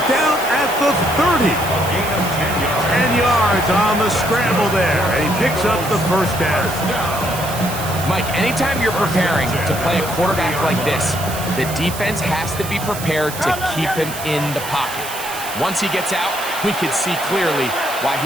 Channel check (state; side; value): noise; right; hiss, 10 dB below the sound